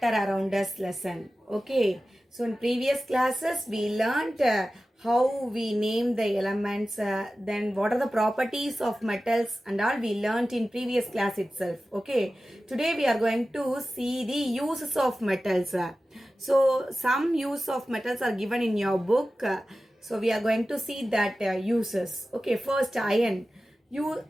around us lesson. Okay. So in previous classes we learned how we name the elements, then what are the properties of metals and all we learned in previous class itself. Okay. Today we are going to see the uses of metals. So some use of metals are given in your book. So we are going to see that uses. Okay. First, iron.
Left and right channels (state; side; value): normal; both; correlation 0.95